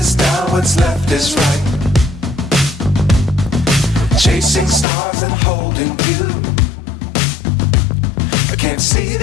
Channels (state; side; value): drops out; right; at 4.9 s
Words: down, what's left is right. Chasing stars and holding you. I can't see